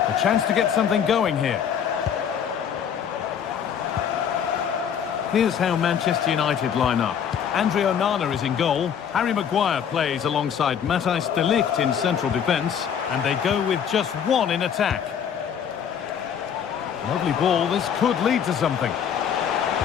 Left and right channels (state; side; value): quieter; right; 8.1 dB